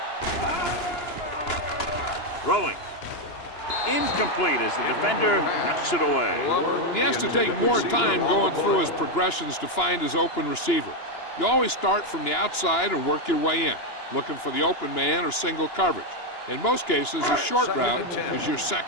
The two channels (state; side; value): late; right; 2.9 ms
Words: Throwing. Incomplete as the defender knocks it away. He has to take more time going through his progressions to find his open receiver. You always start from the outside and work your way in, looking for the open man or single coverage. In most cases, a short route is your